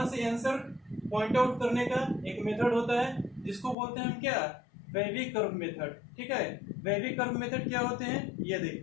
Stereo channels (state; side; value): drops out; right; at 3.8 s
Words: से आंसर पॉइंट आउट करने का एक मेथड होता है जिसको बोलते हैं हम क्या, वेवी कर्व मेथड, ठीक है। वेवी कर्व मेथड क्या होते हैं ये